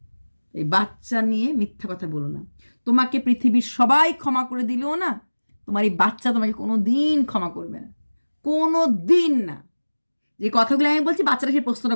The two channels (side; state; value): both; inverted; correlation -1.00